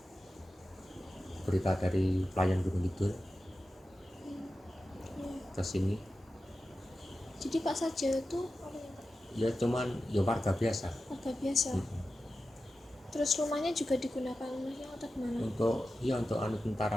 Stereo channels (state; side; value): normal; both; correlation 0.93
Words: berita dari pelayan Gunung Kidul ke sini. Jadi Pak Sarjio itu apa ya Pak? Ya cuman ya warga biasa. Warga biasa. Terus rumahnya juga digunakan rumahnya atau gimana? Untuk